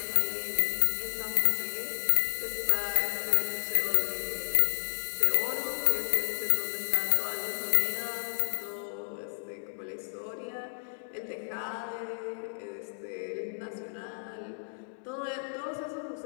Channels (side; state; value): right; silent; digital silence